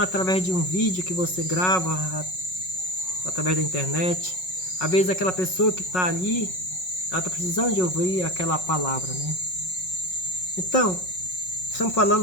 através de um vídeo que você grava, através da internet. Às vezes aquela pessoa que está ali, ela está precisando de ouvir aquela palavra, né? Então, estamos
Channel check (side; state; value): right; late; 5.4 ms